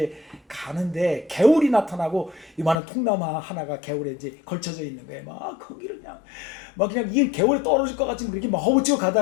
가는데 개울이 나타나고 이만한 통나무 하나가 개울에 이제 걸쳐져 있는 거예요. 막 거기를 그냥 이 개울에 떨어질 것 같이 그렇게 막 허우치고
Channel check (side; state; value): right; drops out; at 2.8 s